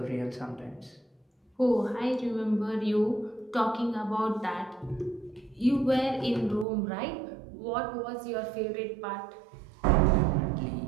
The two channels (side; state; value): left; drops out; at 6.7 s